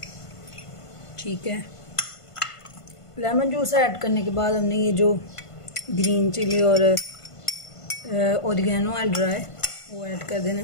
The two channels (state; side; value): late; right; 1.5 ms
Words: ठीक है, लेमन जूस ऐड करने के बाद हमने ये जो ग्रीन चिली और ओरिगेनो है ड्राई, वो ऐड कर देना